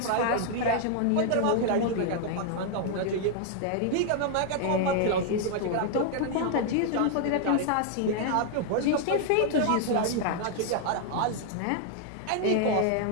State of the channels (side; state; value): both; different; correlation 0.00